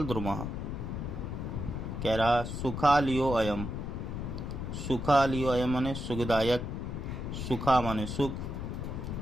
द्रुमा। कह रहा सुखा लियो अयम। सुखा लियो अयम माने सुखदायक, सुखा माने सुख,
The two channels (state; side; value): noise; left; rumble, 5 dB below the sound